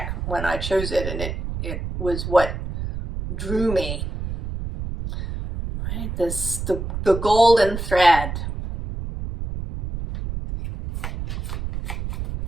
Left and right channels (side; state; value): right; noise; rumble, 6 dB below the sound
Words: when I chose it, and it was what drew me. Right? The golden thread.